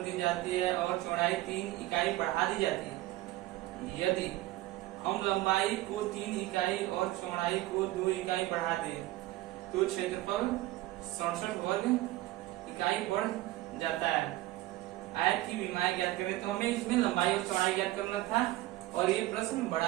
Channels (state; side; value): quieter; left; 17.0 dB